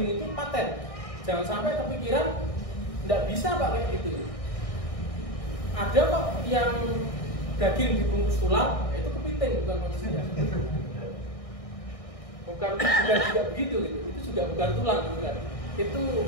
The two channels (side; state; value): right; late; 1.6 ms